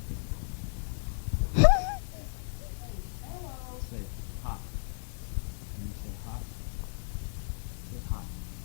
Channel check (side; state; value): right; silent; digital silence